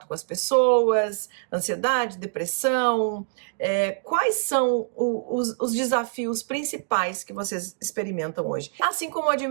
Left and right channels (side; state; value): left; silent; digital silence